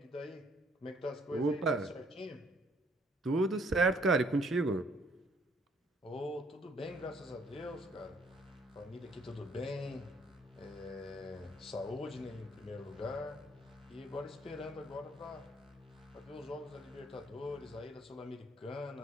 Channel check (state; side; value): normal; both; correlation 0.64